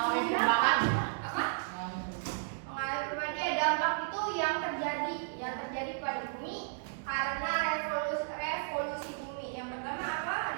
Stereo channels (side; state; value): left; silent; digital silence